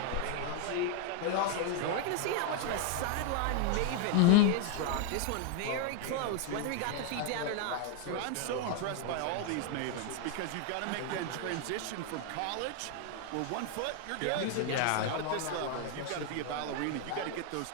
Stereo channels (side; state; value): both; different; correlation 0.00